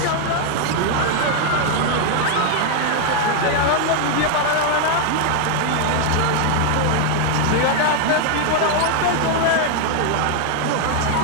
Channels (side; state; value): both; different; correlation 0.00